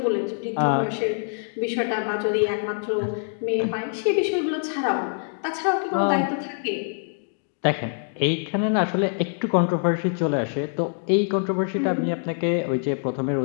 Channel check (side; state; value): right; silent; 62 dB below the other